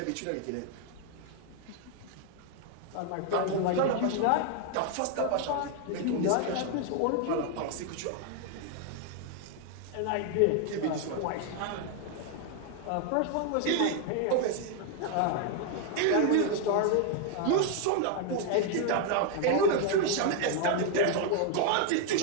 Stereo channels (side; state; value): both; different; correlation 0.00